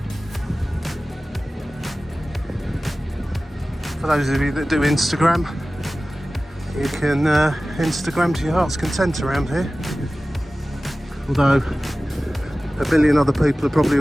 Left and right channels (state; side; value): normal; both; correlation 0.96